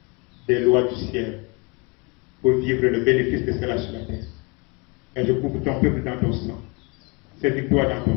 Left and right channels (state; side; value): quieter; right; 28.8 dB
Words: des lois du ciel pour vivre le bénéfice de cela sur la terre. Et je couvre ton peuple dans ton sang. Saisis-toi dans ton